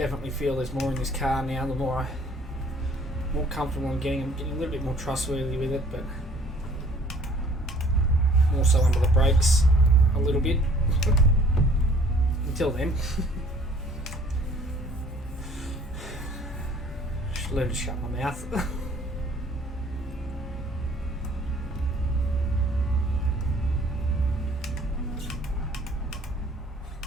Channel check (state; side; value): normal; both; correlation 0.55